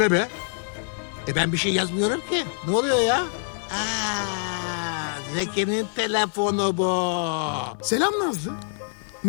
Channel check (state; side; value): silent; right; 55 dB below the other